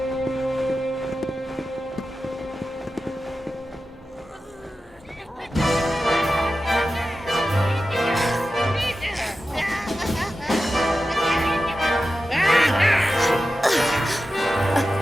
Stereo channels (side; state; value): both; normal; correlation 0.93